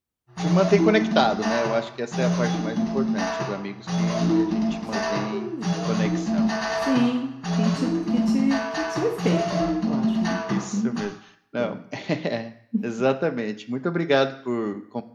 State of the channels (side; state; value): both; identical; correlation 1.00